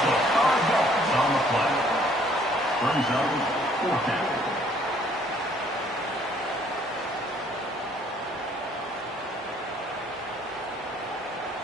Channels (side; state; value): both; normal; correlation 0.61